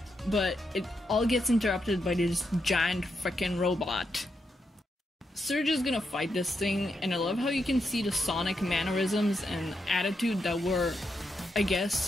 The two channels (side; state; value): both; normal; correlation 0.83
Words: But it all gets interrupted by this giant frickin' robot. Surge is gonna fight this thing, and I love how you can see the Sonic mannerisms and attitude that were, I